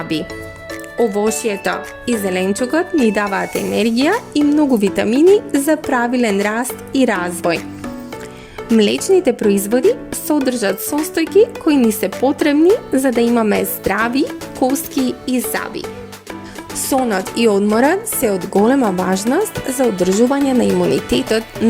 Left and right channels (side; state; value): both; identical; correlation 1.00